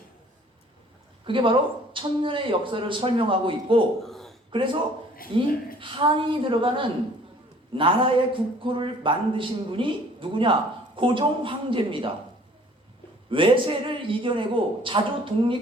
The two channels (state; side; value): normal; both; correlation 0.54